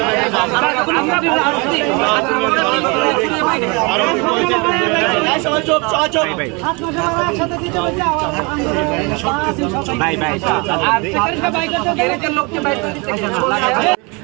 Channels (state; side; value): quieter; left; 29.3 dB